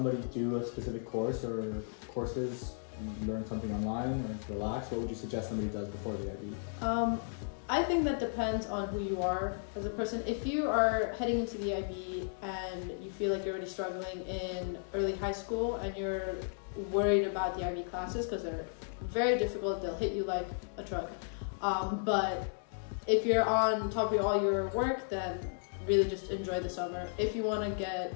do a specific course or courses, learn something online or relax? What would you suggest somebody does before the IB? I think that depends on who you are as a person. If you are heading into the IB and you feel like you're already struggling in early high school and you're worried about the IB classes because they're very difficult, they'll hit you like a truck. But if you're on top of all your work, then really just enjoy the summer. If you want to get,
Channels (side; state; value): right; silent; digital silence